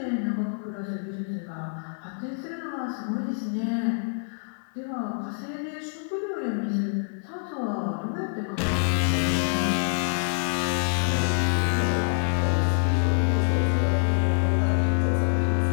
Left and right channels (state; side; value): silent; right; 61 dB below the other